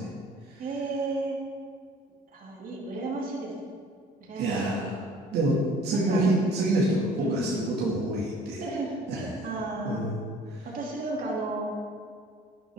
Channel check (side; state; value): both; normal; correlation 0.52